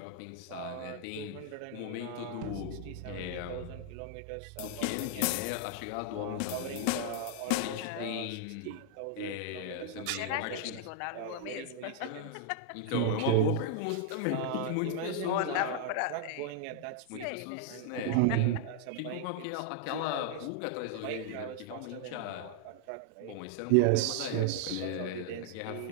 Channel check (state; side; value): different; both; correlation 0.00